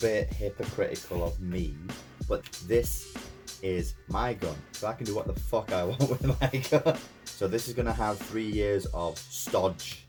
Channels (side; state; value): both; identical; correlation 1.00